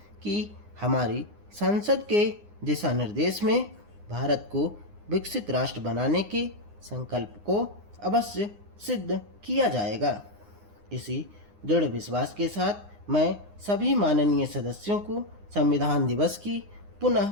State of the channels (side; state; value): left; late; 9.7 ms